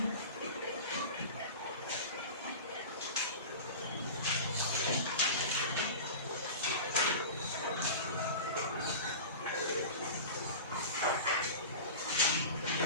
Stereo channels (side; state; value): both; inverted; correlation -0.32